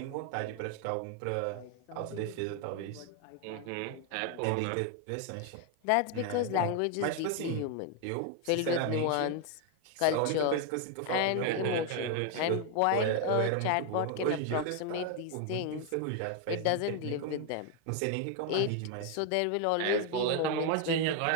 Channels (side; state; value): both; different; correlation 0.01